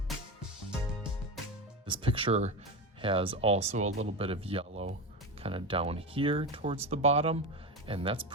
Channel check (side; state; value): both; normal; correlation 0.19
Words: This picture has also a little bit of yellow kind of down here towards the bottom, and that's